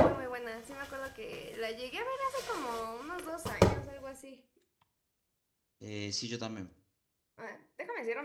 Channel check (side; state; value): both; identical; correlation 1.00